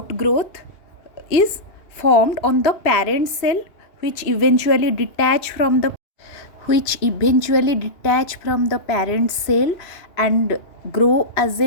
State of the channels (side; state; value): right; late; 2.8 ms